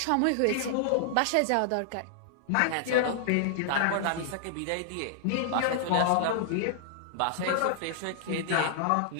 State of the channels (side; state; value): both; different; correlation -0.01